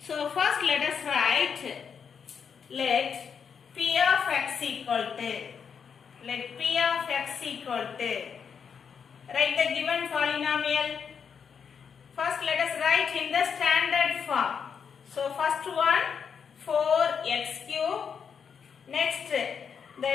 first let us write, let p of x equal to, write the given polynomial. First let us write in the standard form. So first one 4x cube. Next the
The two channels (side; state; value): right; quieter; 6.8 dB